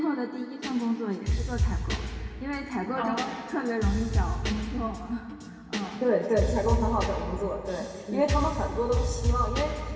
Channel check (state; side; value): identical; both; correlation 1.00